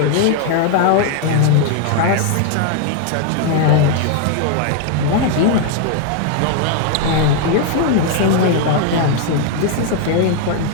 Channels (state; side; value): different; both; correlation 0.00